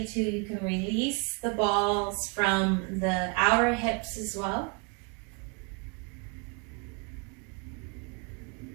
to, you can release the balls from the outer hips as well.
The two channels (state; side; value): quieter; left; 34.4 dB